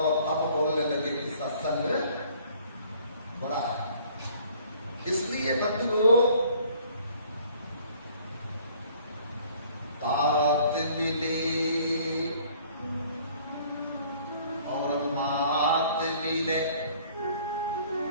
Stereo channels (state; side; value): inverted; both; correlation -0.56